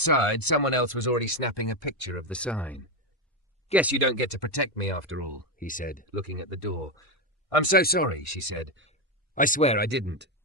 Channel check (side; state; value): both; normal; correlation 0.08